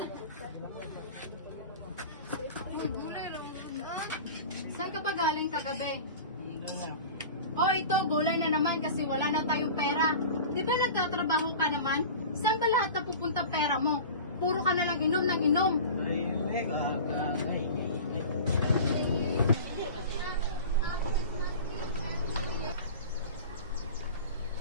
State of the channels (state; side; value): inverted; both; correlation -0.36